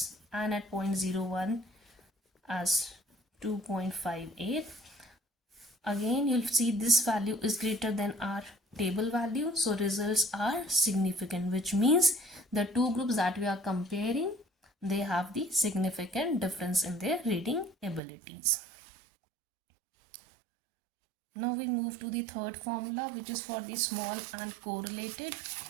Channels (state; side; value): drops out; left; at 18.0 s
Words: and at 0.01 as 2.58. Again, you'll see this value is greater than our table value, so results are significant, which means the two groups that we are comparing, they have the significant difference in their reading abilities. Now we move to the third formula, which is for the small and correlated.